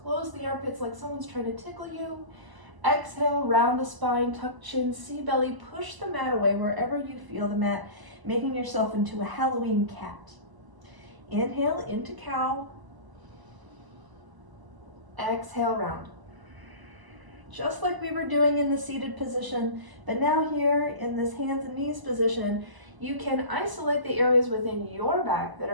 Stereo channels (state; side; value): late; left; 1.0 ms